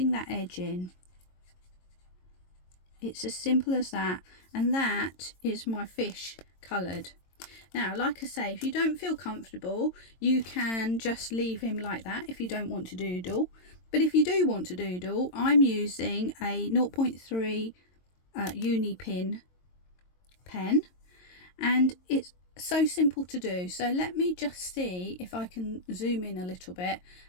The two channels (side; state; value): right; late; 22 ms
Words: that edge in. It's as simple as that, and that is my fish coloured. Now, like I say, if you don't feel comfortable, you can just leave him like that if you don't want to doodle. But if you do want to doodle, I'm using a 0.3 uni pin pen, and it's so simple to do. So let me just see if I can zoom in a little bit